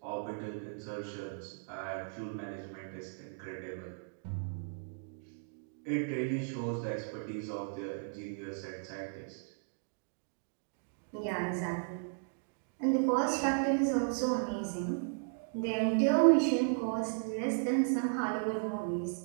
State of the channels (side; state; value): left; silent; digital silence